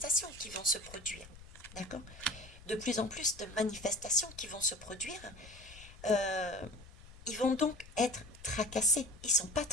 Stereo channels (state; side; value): noise; left; rumble, 18 dB below the sound